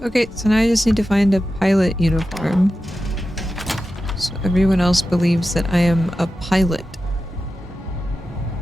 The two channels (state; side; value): normal; both; correlation 0.92